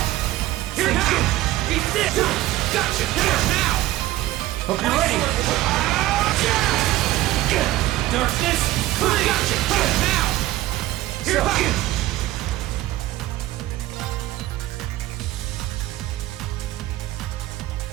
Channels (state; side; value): quieter; left; 16.0 dB